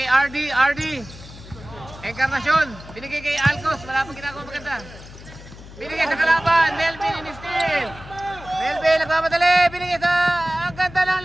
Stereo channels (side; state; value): left; noise; hum, 17 dB below the sound